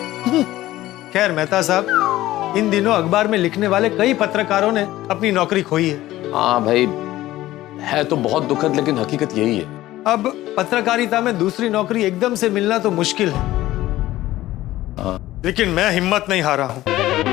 खैर मेहता साहब, इन दिनों अखबार में लिखने वाले कई पत्रकारों ने अपनी नौकरी खोई है। हाँ भाई, है तो बहुत दुखद, लेकिन हकीकत यही है। अब पत्रकारिता में दूसरी नौकरी एकदम से मिलना तो मुश्किल है। लेकिन मैं हिम्मत नहीं हारा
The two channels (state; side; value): quieter; right; 15.7 dB